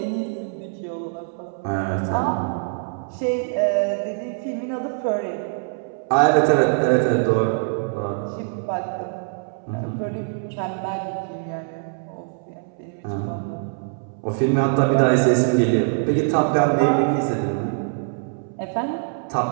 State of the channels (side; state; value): left; silent; 63 dB below the other